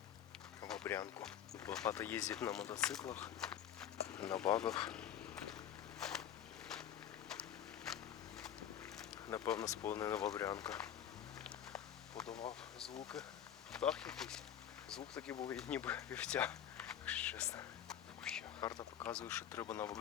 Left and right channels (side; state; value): right; quieter; 10.0 dB